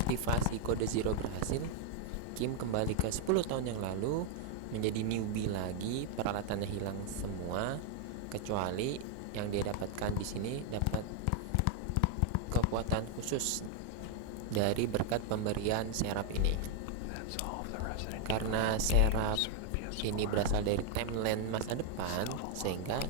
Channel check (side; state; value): both; different; correlation 0.00